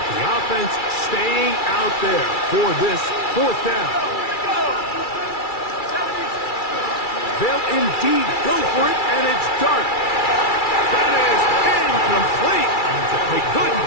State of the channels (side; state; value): right; late; 2.3 ms